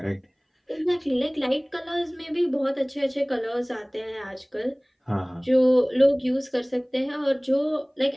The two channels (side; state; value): both; identical; correlation 1.00